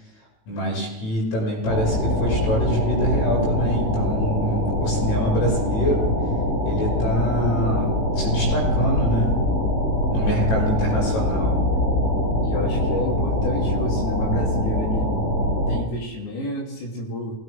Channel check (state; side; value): late; right; 18 ms